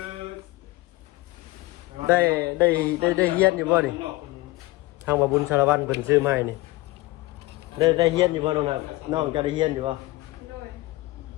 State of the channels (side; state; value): right; quieter; 19.7 dB